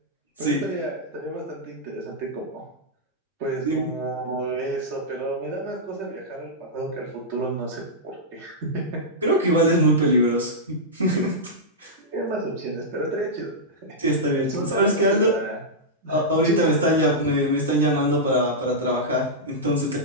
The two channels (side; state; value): both; normal; correlation -0.10